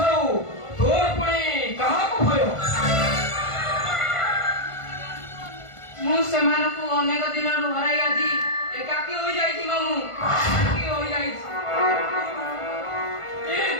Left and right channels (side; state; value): right; late; 1.5 ms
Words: तोर पुणी कहाँ को भयो मु सेमानकु अनेक दिन हराई आजी एकाकी होई जाईची मामू एकाकी होई जाईची ए